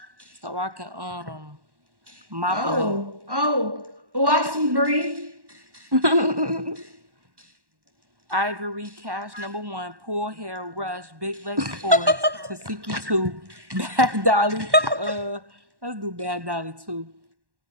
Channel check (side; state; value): left; late; 1.1 ms